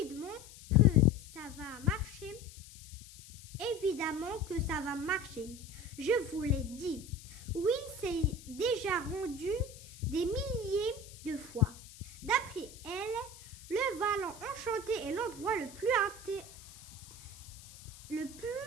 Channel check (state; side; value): noise; left; hiss, 18 dB below the sound